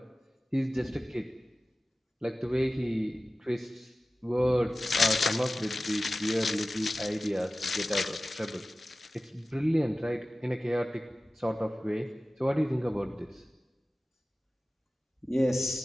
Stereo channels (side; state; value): both; normal; correlation 0.96